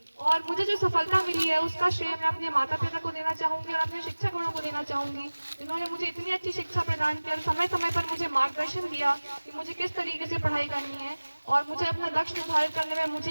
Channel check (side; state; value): both; inverted; correlation -1.00